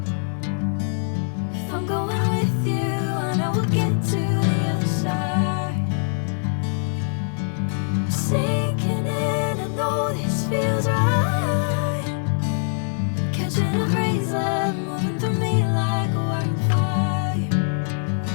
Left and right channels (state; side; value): silent; right; digital silence